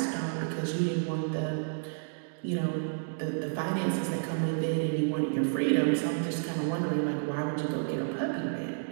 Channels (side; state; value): left; silent; digital silence